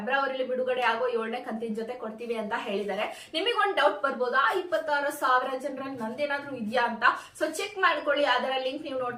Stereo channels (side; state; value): both; identical; correlation 1.00